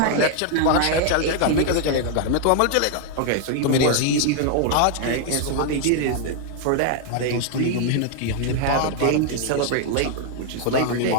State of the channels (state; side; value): different; both; correlation 0.00